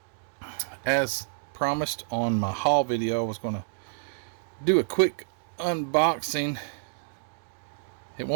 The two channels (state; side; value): silent; left; digital silence